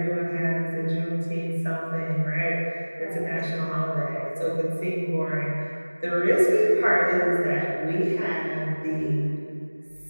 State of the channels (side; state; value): both; inverted; correlation -1.00